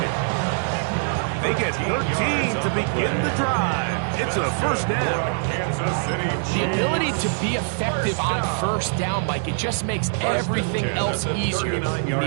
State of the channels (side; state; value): left; silent; digital silence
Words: They get 13 to begin the drive. It's a first down. Kansas City. The ability to be effective on first down, Mike, it just makes everything else easier. In the